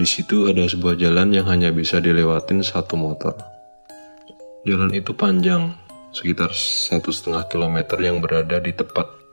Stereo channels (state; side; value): inverted; both; correlation -1.00